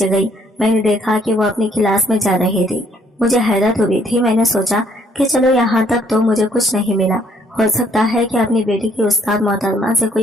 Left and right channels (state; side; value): normal; both; correlation 0.66